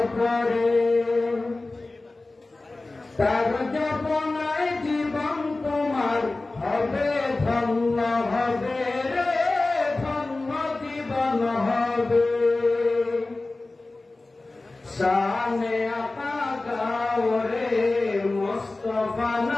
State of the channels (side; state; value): right; quieter; 3.2 dB